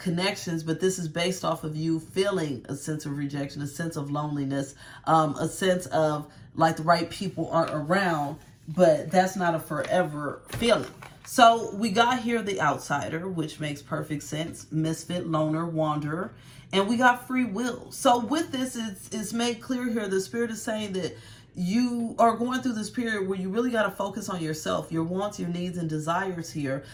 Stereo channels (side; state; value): both; identical; correlation 1.00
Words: but this is based off of you feeling a sense of rejection, a sense of loneliness, a sense of like the right people aren't around, but that's not a forever feeling. So we got here the outsider, which makes perfect sense. Misfit, loner, wanderer. And we got free will. So with this, it's made clear here, the Spirit is saying that you are going through this period where you really got to focus on yourself, your wants, your needs, and desires here,